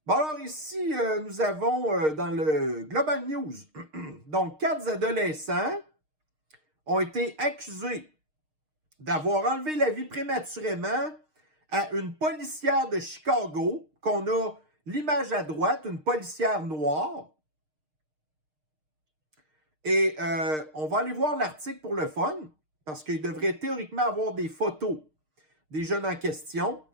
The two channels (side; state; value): left; late; 6.5 ms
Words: Bon, alors ici, nous avons dans le Global News, donc 4 adolescents ont été accusés d'avoir enlevé la vie prématurément à une policière de Chicago, qu'on a l'image à droite, une policière noire. Et on va aller voir l'article pour le fun, parce qu'il devrait théoriquement avoir des photos des jeunes en question.